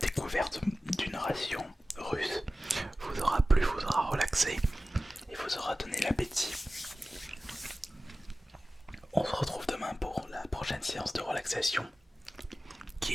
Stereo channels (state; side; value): normal; both; correlation 0.96